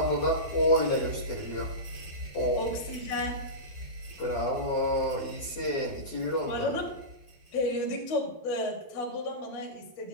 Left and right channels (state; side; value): late; right; 12 ms